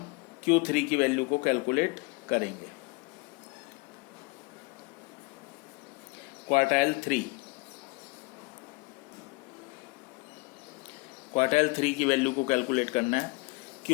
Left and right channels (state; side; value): quieter; right; 25.7 dB